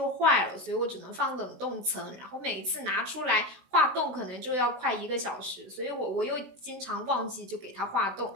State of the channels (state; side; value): late; left; 16 ms